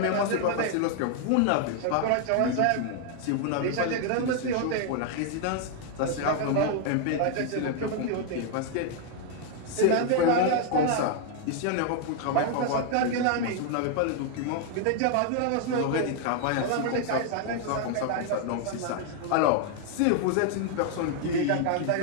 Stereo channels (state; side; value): different; both; correlation 0.00